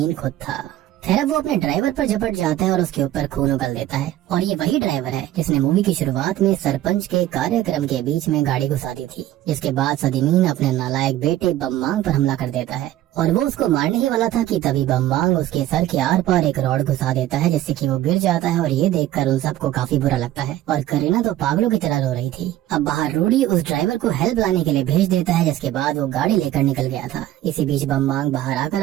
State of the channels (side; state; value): left; quieter; 13.7 dB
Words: खुद था। खैर वो अपने ड्राइवर पर झपट जाता है और उसके ऊपर खून उगल देता है और ये वही ड्राइवर है जिसने मूवी की शुरुआत में सरपंच के कार्यक्रम के बीच में गाड़ी घुसा दी थी। जिसके बाद सदीमीन अपने नालायक बेटे बम्बांग पर हमला कर देता है और वो उसको मारने ही वाला था कि तभी बम्बांग उसके सर के आर पार एक रॉड घुसा देता है, जिससे कि वो गिर जाता है। और ये देखकर उन सबको काफी बुरा लगता है और करीना तो पागलों की तरह रो रही थी। अब बाहर रूडी उस ड्राइवर को हेल्प लाने के लिए भेज देता है, जिसके बाद वो गाड़ी लेकर निकल गया था। इसी बीच बम्बांग बाहर आकर